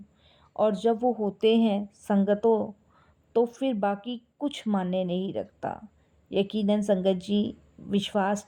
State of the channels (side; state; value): both; identical; correlation 1.00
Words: और जब वो होते हैं संगतों, तो फिर बाकी कुछ मायने नहीं रखता। यकीनन संगत जी, विश्वास